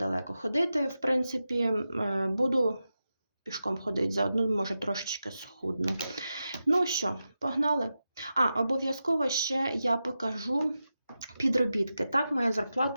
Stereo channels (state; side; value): inverted; both; correlation -0.91